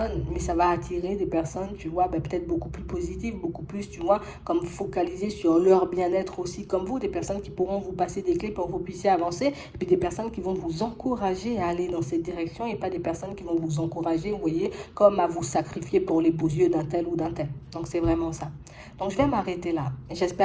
mais ça va attirer des personnes, tu vois, ben peut-être beaucoup plus positives, beaucoup plus, tu vois, comme focaliser sur leur bien-être aussi, comme vous, des personnes qui pourront vous passer des clés pour que vous puissiez avancer, et puis des personnes qui vont vous encourager à aller dans cette direction, et pas des personnes qui vont vous encourager, vous voyez, comme à vous sacrifier pour les beaux yeux d'un tel ou d'un tel. Donc c'est vraiment ça. Donc je vais m'arrêter là.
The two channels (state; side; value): identical; both; correlation 1.00